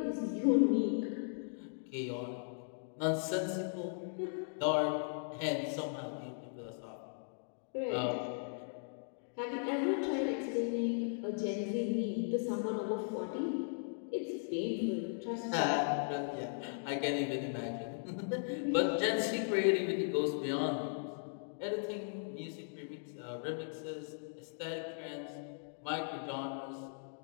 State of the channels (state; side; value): silent; right; digital silence